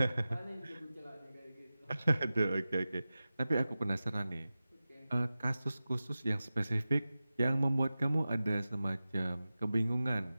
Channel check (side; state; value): both; inverted; correlation -0.95